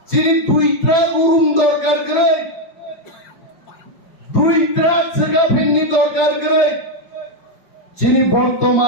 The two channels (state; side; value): late; right; 5.3 ms